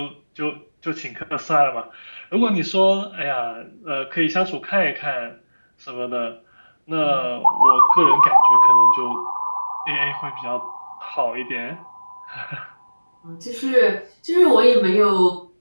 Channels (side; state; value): both; inverted; correlation -1.00